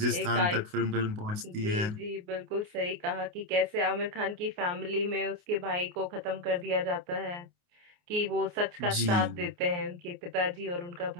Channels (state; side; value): late; left; 28 ms